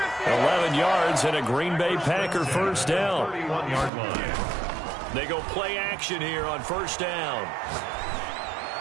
11 yards and a Green Bay Packer 1st down. 31-yard line. They go play action here on 1st down.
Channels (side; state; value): left; drops out; at 3.9 s